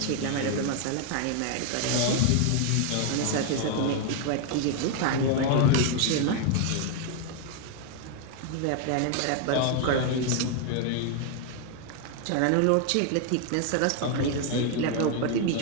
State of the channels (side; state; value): both; different; correlation 0.00